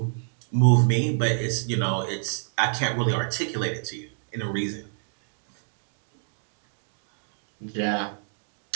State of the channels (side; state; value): left; silent; digital silence